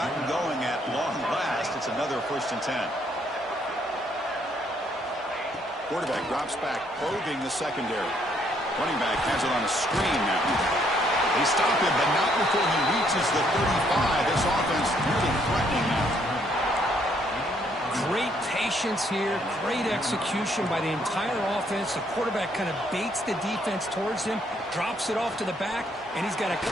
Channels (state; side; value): normal; both; correlation 0.69